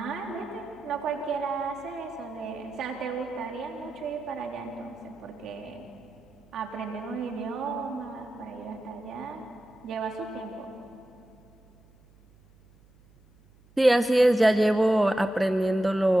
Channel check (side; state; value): right; noise; hum, 29 dB below the sound